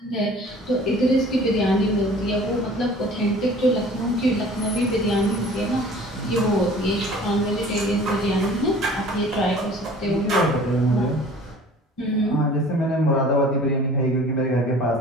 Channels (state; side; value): normal; both; correlation 0.47